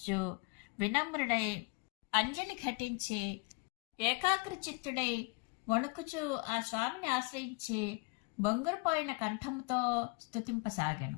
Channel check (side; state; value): right; quieter; 31.4 dB